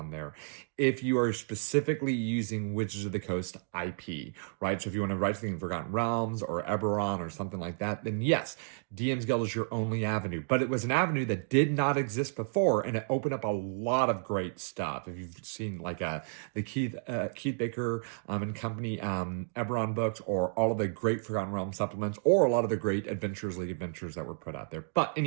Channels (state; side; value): silent; left; digital silence